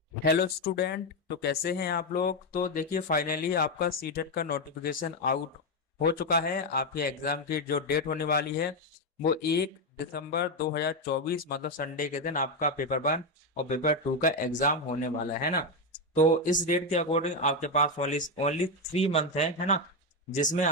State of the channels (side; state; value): both; normal; correlation 0.07